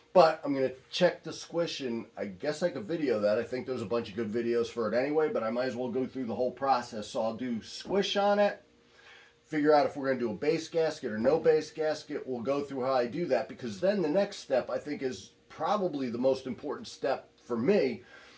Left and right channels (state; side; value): identical; both; correlation 1.00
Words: But I'm going to check the squish, and I guess I could video that. I think there's a bunch of good videos for it anyway, but I might as well go through the whole process. So I'll do squish on it, figure out if we're going to do a base gasket or no base gasket. We'll go through how I do that, because then the next step, I think, is probably the most important step for me.